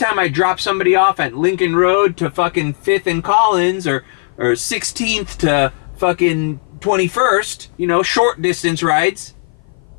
I drop somebody off at Lincoln Road to fucking 5th and Collins, or 16th to fucking 21st, you know, short distance rides,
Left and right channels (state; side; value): silent; right; 56 dB below the other